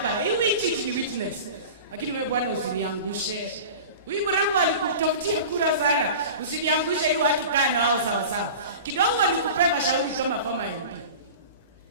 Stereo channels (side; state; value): both; inverted; correlation -0.36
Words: Hii chiti ni witness. Lakini wewe bwana usiniangushe. Huyu mrembo alikutafutia kura sana. Usiniangushe hii watu kaa na wao sawa sawa. Kidogo nikupe mashauri kama former MP.